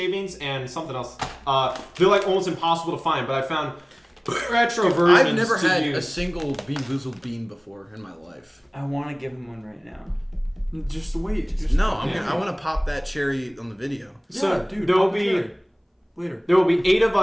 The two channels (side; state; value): both; identical; correlation 1.00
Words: and something else. They're like almost impossible to find, but I found retro versions. I've never to had a use. single Bean Boozled bean before in my life. I want to give him one right now. Just wait. Just No, Yeah. I want to pop that cherry on the video. So dude, there will pop the be cherry. Later. there will be 8 of